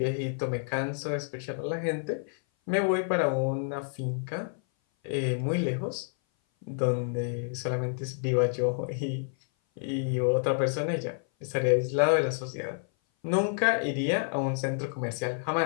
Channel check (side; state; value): right; silent; 56 dB below the other